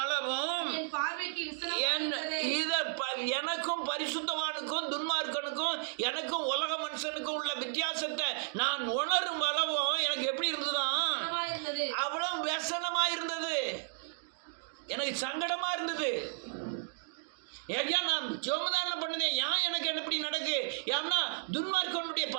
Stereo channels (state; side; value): silent; left; digital silence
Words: அளவும் எனக்கும் பரிசுத்தவானுக்கும் துன்மார்க்கனுக்கும் எனக்கும் உலக மனுஷனுக்கும் உள்ள வித்தியாசத்தை நான் உணரும் அளவும் எனக்கு எப்படி இருந்ததுதான், அவ்வளவு व्यसனமா இருந்தது, எனக்கு சங்கடமா இருந்தது. ஐயா நான் ஜோமதான பண்ணதே ஏன் எனக்கு எப்படி நடக்கு, ஏன்னா துன்மார்க்கனுடைய